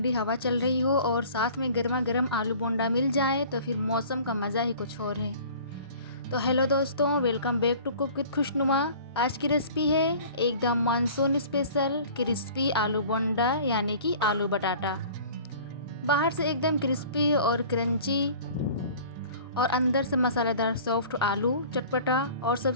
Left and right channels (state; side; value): inverted; both; correlation -0.45